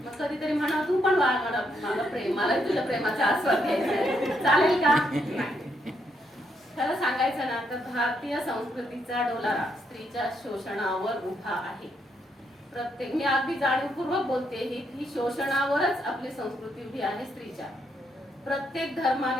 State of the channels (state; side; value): normal; both; correlation 0.77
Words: मग कधीतरी म्हणा तू पण वाढ, मला प्रेम, मला तुझ्या प्रेमाचा आस्वाद घ्यायचा, चालेल का? खरं सांगायचं ना तर भारतीय संस्कृतीचा डोलारा स्त्रीच्या शोषणावर उभा आहे. प्रत्येक, मी अगदी जाणीवपूर्वक बोलते ही शोषणावरच आपली संस्कृती उभी आहे स्त्रीच्या. प्रत्येक